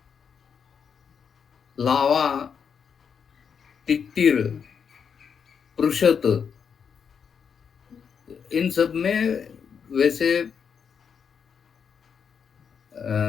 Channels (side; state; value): right; quieter; 6.9 dB